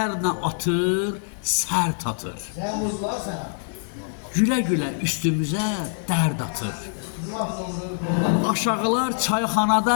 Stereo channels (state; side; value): silent; right; digital silence